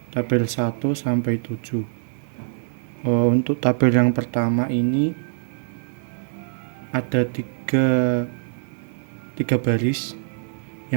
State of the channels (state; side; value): silent; left; digital silence